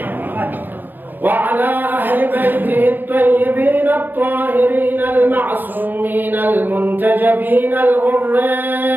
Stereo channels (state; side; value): late; left; 0.091 ms